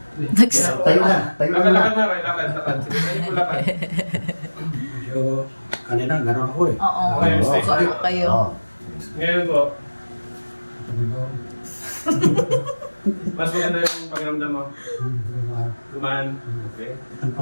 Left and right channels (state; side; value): inverted; both; correlation -1.00